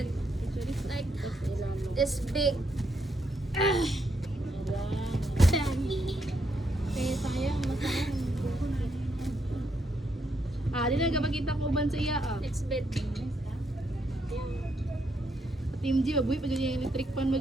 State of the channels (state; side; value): normal; both; correlation 0.77